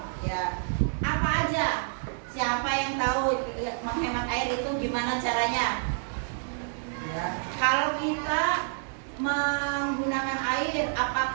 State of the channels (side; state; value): left; silent; digital silence